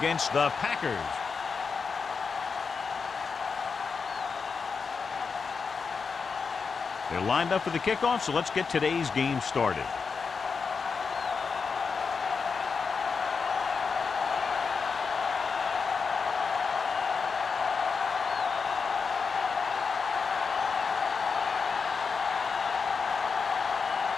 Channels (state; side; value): quieter; right; 5.3 dB